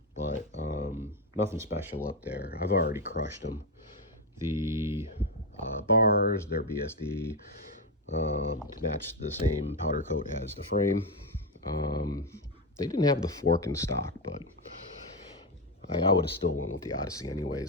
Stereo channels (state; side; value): normal; both; correlation 0.08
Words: but nothing special up there. I've already crushed them. The bars, they're BSD to match the same powder coat as the frame. They didn't have the fork in stock, but I would have still went with the Odyssey